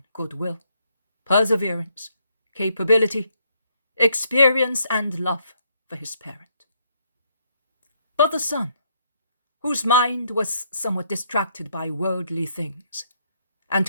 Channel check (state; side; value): inverted; both; correlation -0.72